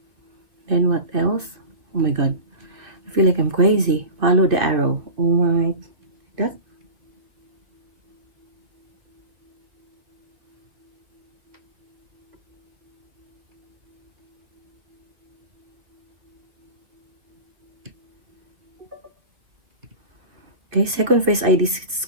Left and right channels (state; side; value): late; left; 2.6 ms